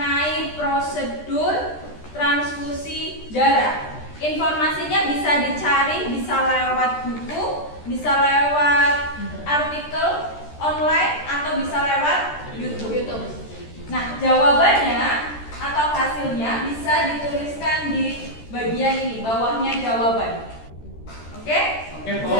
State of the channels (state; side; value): late; right; 13 ms